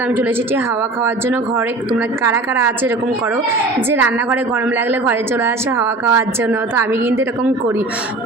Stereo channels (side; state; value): left; quieter; 3.0 dB